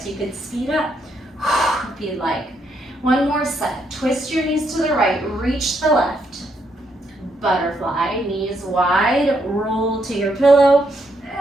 you could speed up if you'd like. One more set. Twist your knees to the right, reach the left. Butterfly, knees wide, roll to your pillow.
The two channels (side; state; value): both; normal; correlation 0.76